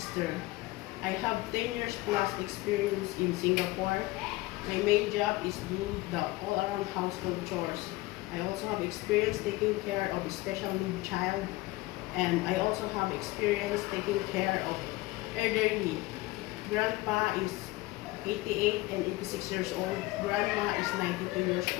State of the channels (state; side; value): quieter; right; 19.9 dB